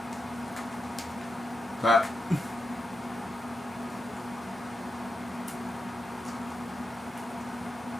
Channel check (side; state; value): both; normal; correlation 0.87